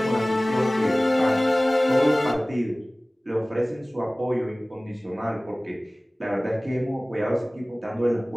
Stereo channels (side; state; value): both; normal; correlation 0.98